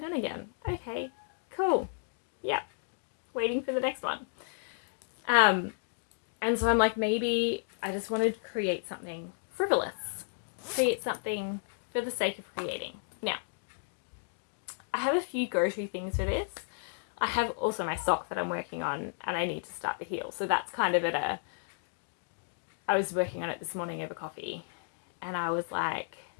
again. Okay, cool. Yep. Waiting for the next one. And so I'm like, maybe I just want to create something frivolous. Create something for the sake of creating. Now, I have a few go-to things for this. I have also my sock that I'm working on, and I need to start the heel. So that's kind of I was working on it this morning over coffee, and I was like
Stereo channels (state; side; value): silent; right; digital silence